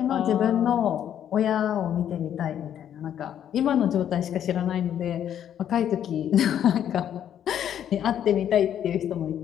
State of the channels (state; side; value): quieter; right; 9.9 dB